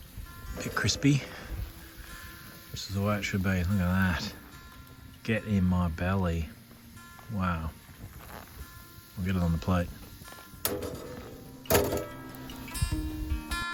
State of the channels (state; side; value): identical; both; correlation 1.00